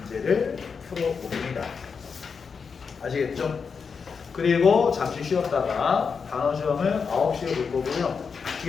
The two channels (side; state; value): right; quieter; 5.7 dB